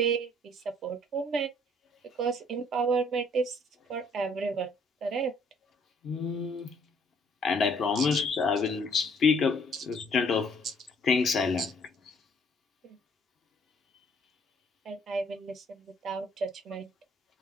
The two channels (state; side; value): normal; both; correlation 0.62